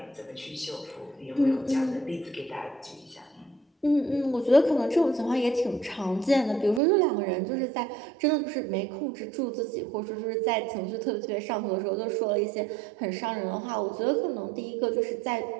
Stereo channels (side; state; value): left; drops out; at 6.8 s